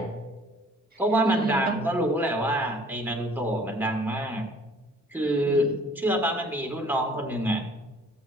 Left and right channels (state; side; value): normal; both; correlation 0.55